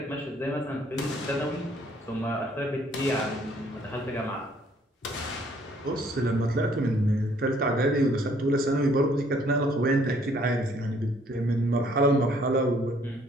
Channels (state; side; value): normal; both; correlation 0.62